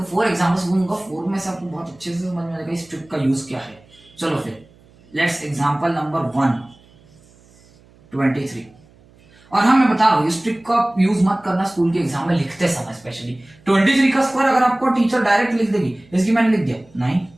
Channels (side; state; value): right; noise; hum, 28 dB below the sound